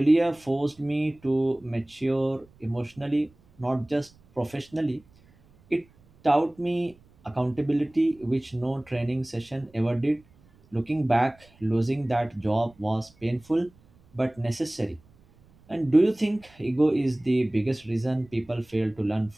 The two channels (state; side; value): noise; right; rumble, 29 dB below the sound